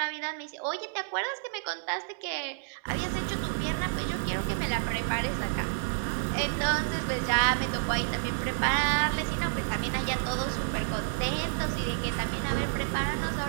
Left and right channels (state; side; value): silent; left; digital silence